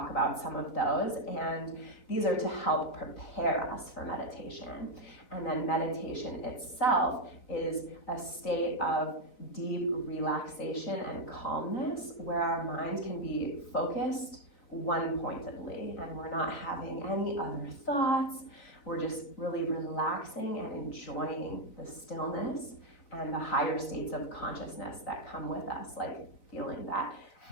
about some of those, and these are to help prepare us for meditation. And then meditation itself is a state of deep relaxation and calmness where our mind can be focused one-pointedly and we're not having any other thoughts. We're just really relaxing and enjoying the stillness and the higher states of consciousness that come with us, like feeling that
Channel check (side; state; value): right; late; 4.0 ms